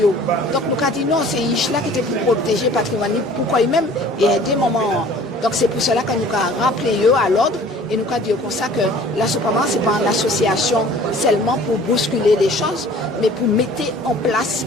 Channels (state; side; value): normal; both; correlation 0.49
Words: Donc nous avons dit non, c'est Ishla qui était pour protéger le patrimoine, pourquoi même et à des moments. Donc c'est pour cela que nous avons rappelé eux à l'ordre et nous avons dit comme ça que la Sopama ce n'est pas une association seulement pour bousculer les choses, mais pour mettre en place